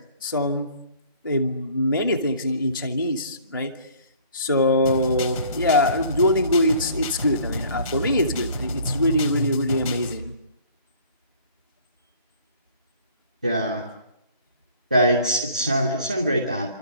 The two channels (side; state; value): both; inverted; correlation -0.53